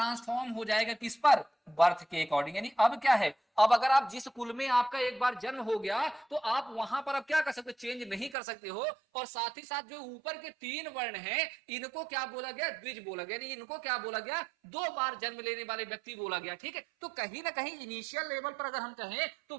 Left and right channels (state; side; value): drops out; left; at 8.3 s